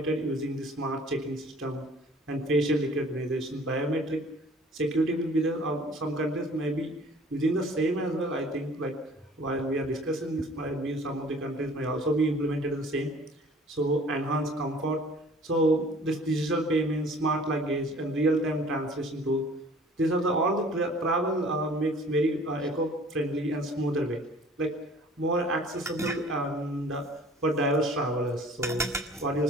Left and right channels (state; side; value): normal; both; correlation 0.50